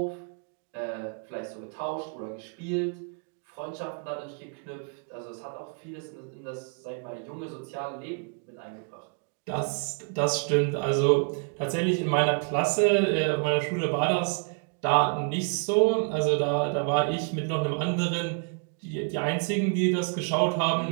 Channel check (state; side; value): quieter; left; 39.7 dB